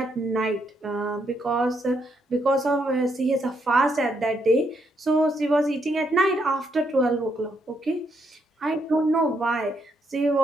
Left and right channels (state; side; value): normal; both; correlation 0.76